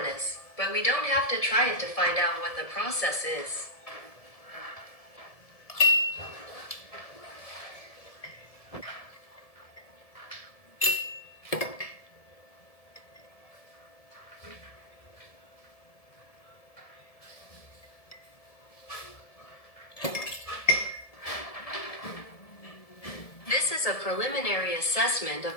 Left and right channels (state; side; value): late; right; 1.7 ms